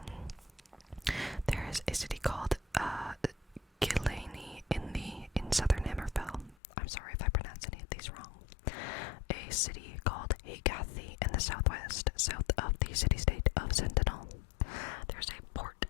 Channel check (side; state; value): right; drops out; at 6.6 s